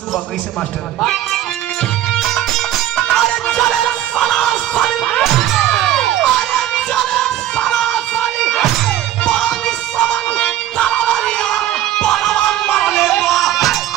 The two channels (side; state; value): left; quieter; 12.6 dB